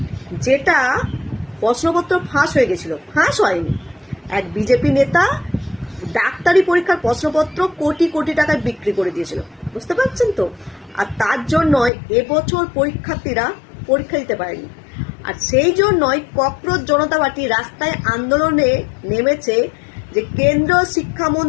যেটা প্রশ্নপত্র ফাঁস হয়ে গেছিল। ফাঁস হয়নি, এক বিজেপি নেতা ডাক্তারি পরীক্ষার প্রশ্নপত্র কোটি কোটি টাকায় বিক্রি করে দিয়েছিল, বুঝতে পারছেন তো। আর তার জন্যই এবছর পরীক্ষার্থীরা পরীক্ষা দিতে পারেনি। আর সেই জন্যই ককরোচ জনতা পার্টি রাস্তায় আন্দোলনে নেমেছে যে কেন্দ্রীয়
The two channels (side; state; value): right; drops out; at 11.9 s